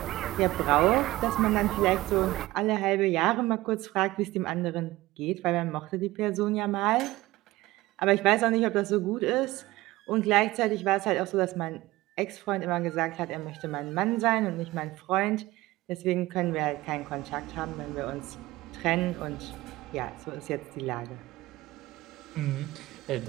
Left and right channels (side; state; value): left; quieter; 18.3 dB